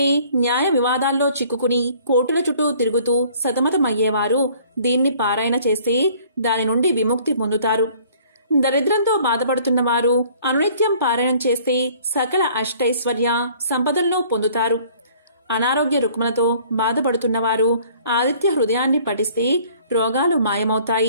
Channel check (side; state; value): both; inverted; correlation -0.55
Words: న్యాయ వివాదాల్లో చిక్కుకుని కోర్టుల చుట్టూ తిరుగుతూ సతమతమయ్యేవారు దీన్ని పారాయణ చేస్తే దాని నుండి విముక్తి పొందుతారు. దరిద్రంతో బాధపడుతున్న వారు అనునిత్యం పారాయణం చేస్తే సకల అష్టైశ్వర్య సంపదలను పొందుతారు. అనారోగ్య రుగ్మలతో బాధపడుతున్నవారు ఆదిత్య హృదయాన్ని పఠిస్తే రోగాలు